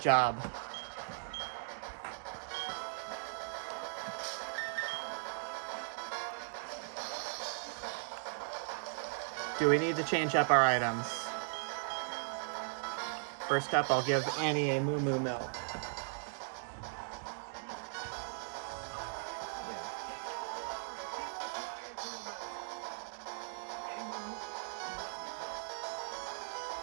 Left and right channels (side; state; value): left; silent; 52 dB below the other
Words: Do we need to change up our items? First up, I'll give Annie a Moo Moo Milk.